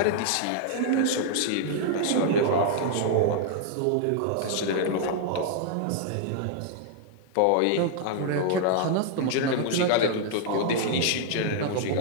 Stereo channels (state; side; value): different; both; correlation -0.01